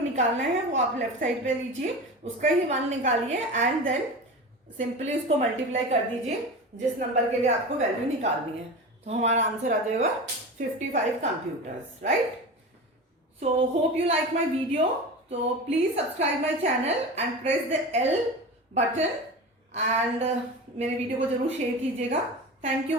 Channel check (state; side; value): normal; both; correlation 0.29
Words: है वो आप लेफ्ट साइड पे लीजिए, उसका ही 1 निकालिए एंड देन सिंपली उसको मल्टीप्लाई कर दीजिए जिस नंबर के लिए आपको वैल्यू निकालनी है, तो हमारा आंसर आ जाएगा 55 computers, right. So hope you like my video, तो please subscribe my channel and press the L button एंड मेरे वीडियो को जरूर शेयर कीजिएगा। Thank you